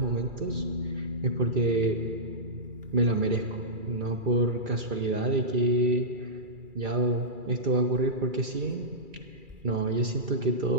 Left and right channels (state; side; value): late; left; 2.4 ms